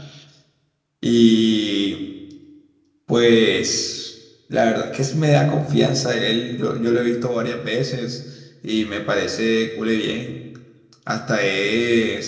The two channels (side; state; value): both; identical; correlation 1.00